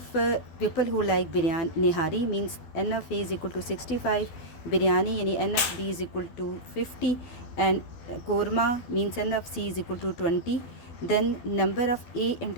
people who like biryani nihari means N of A is equal to 65, biryani यानी N of B is equal to 50, and korma means N of C is equal to 20। Then number of A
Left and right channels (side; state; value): right; late; 12 ms